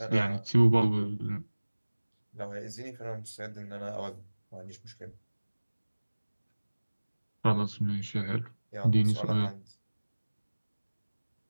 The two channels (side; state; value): both; inverted; correlation -1.00